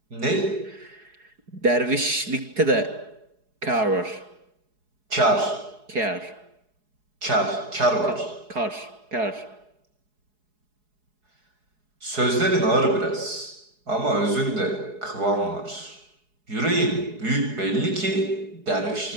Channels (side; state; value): left; late; 4.7 ms